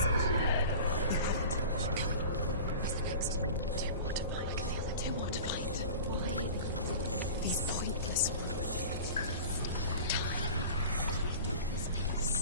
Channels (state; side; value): inverted; both; correlation -0.36